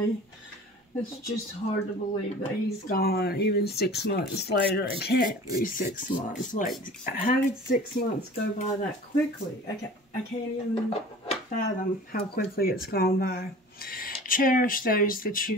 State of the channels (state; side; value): normal; both; correlation 0.42